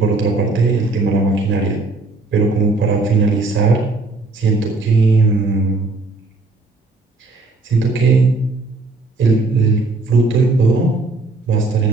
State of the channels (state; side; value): quieter; left; 3.3 dB